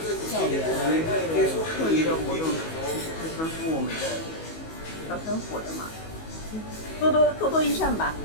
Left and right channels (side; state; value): right; late; 19 ms